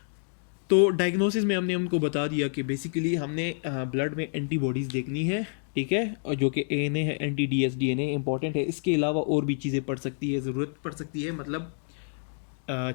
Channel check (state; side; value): silent; right; 59 dB below the other